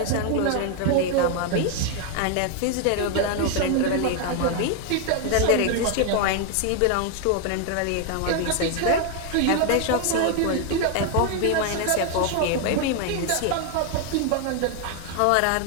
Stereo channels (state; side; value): different; both; correlation 0.00